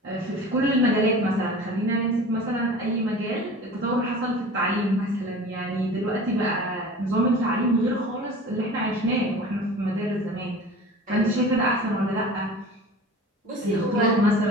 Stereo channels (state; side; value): normal; both; correlation 0.39